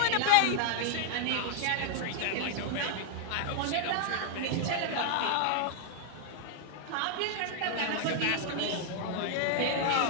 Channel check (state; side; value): different; both; correlation 0.00